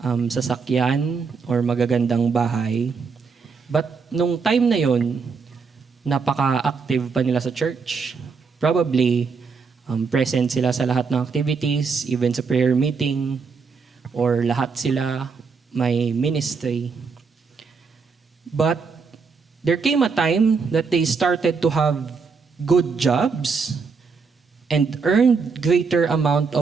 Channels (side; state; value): left; quieter; 5.2 dB